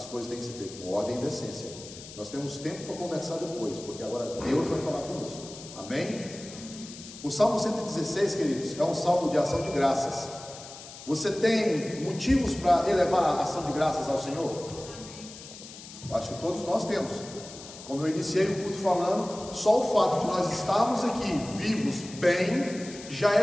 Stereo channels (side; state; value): left; noise; hiss, 15 dB below the sound